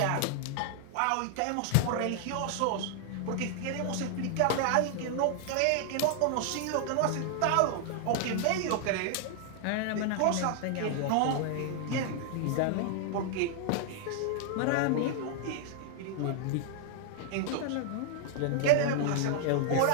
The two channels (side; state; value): both; different; correlation 0.00